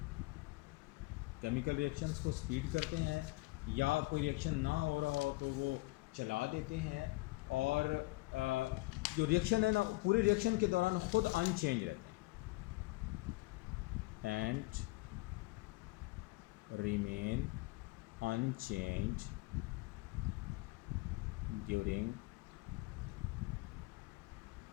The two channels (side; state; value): right; quieter; 22.7 dB